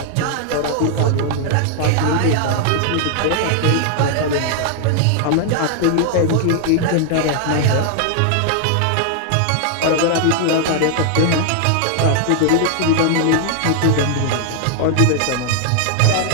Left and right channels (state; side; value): different; both; correlation 0.00